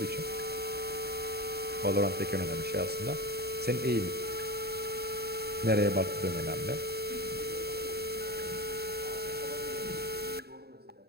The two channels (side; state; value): left; late; 0.47 ms